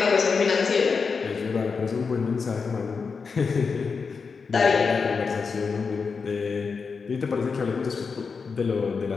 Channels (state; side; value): quieter; right; 5.2 dB